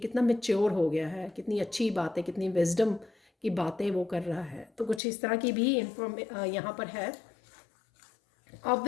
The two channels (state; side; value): drops out; right; at 5.0 s